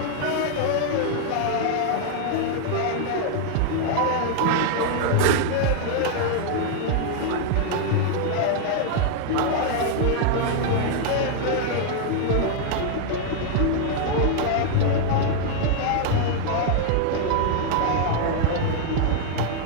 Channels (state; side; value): different; both; correlation 0.00